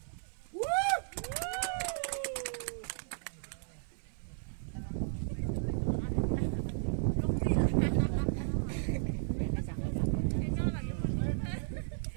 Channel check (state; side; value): silent; left; 55 dB below the other